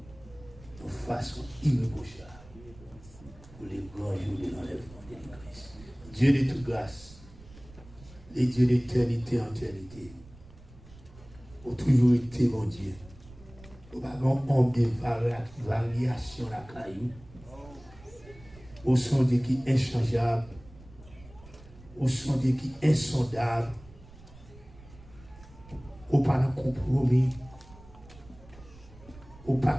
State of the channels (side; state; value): right; noise; rumble, 21 dB below the sound